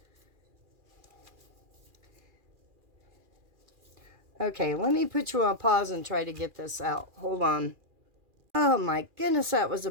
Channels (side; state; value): left; late; 2.4 ms